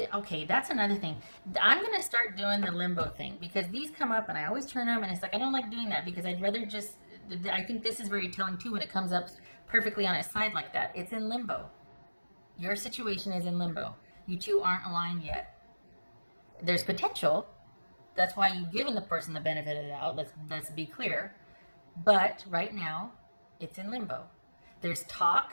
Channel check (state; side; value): inverted; both; correlation -1.00